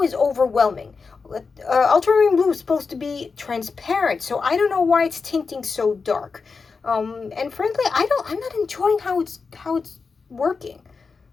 is overwhelming. Ultramarine blue is supposed to be transparent, so I don't know why it's tinting so dark. And frankly, I'm not enjoying how it's working.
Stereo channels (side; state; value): right; quieter; 4.8 dB